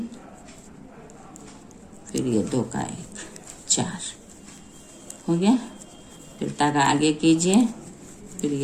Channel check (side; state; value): both; identical; correlation 1.00